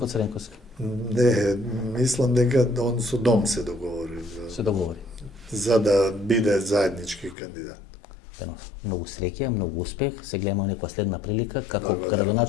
Цренковски. Не, мислам дека он со Дом се договори. Се договори. За да биде заеднички кандидат. Многу среќа, многу успех. Се гледаме некоја следна прилика како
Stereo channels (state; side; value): drops out; right; at 7.4 s